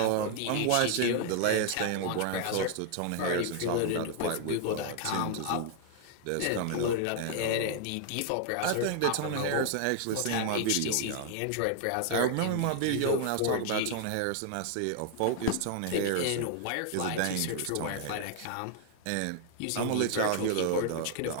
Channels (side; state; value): both; different; correlation 0.00